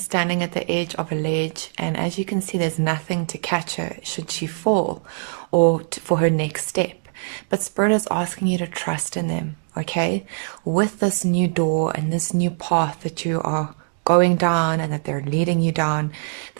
standing at the edge of a ledge, and as you can see, there's nothing to catch her should she fall or for her next step. But Spirit is asking you to trust in them, okay? With this new door and this new path that you are going down and that they're leading you down,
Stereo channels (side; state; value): left; silent; digital silence